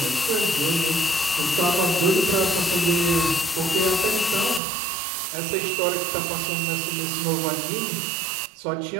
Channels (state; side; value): drops out; left; at 4.6 s